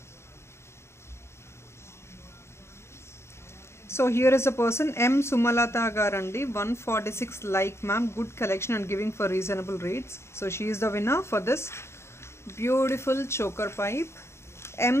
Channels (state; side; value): late; right; 0.13 ms